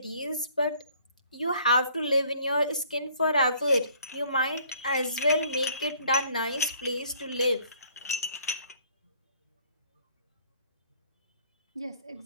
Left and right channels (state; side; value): inverted; both; correlation -0.59